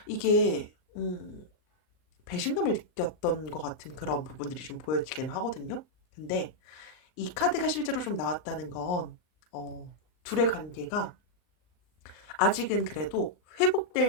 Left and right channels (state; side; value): late; right; 39 ms